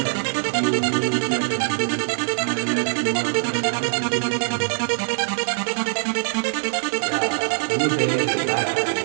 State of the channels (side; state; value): left; silent; digital silence